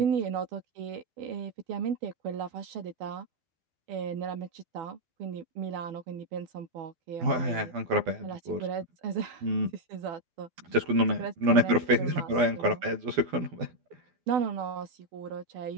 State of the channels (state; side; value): late; left; 12 ms